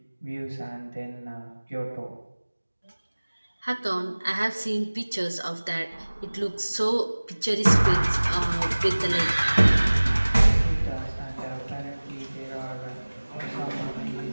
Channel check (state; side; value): inverted; both; correlation -1.00